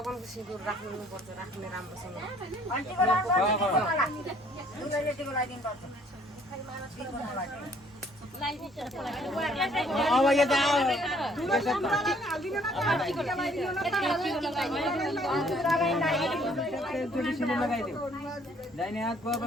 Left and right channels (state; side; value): normal; both; correlation 0.61